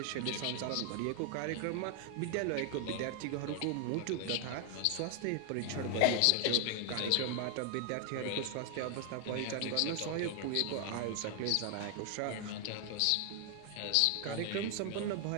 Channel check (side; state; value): both; different; correlation 0.00